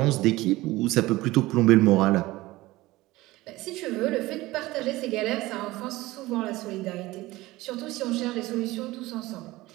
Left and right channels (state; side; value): quieter; left; 18.9 dB